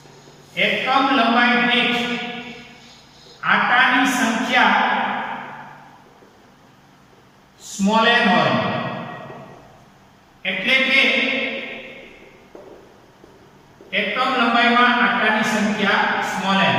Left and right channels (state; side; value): identical; both; correlation 1.00